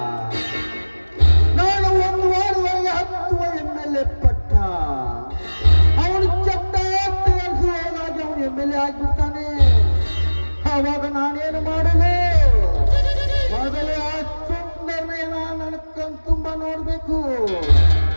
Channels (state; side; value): inverted; both; correlation -1.00